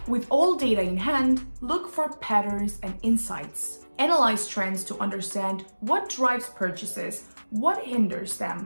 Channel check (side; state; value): both; inverted; correlation -1.00